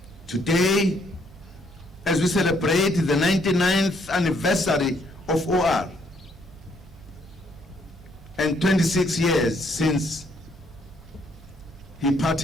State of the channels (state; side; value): normal; both; correlation 0.69